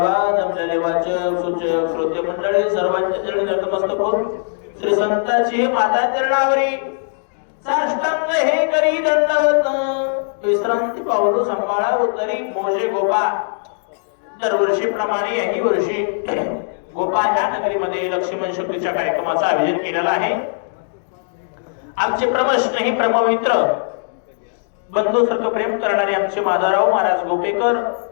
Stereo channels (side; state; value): right; silent; digital silence